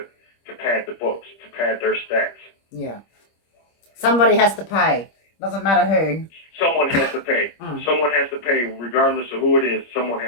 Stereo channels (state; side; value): late; right; 25 ms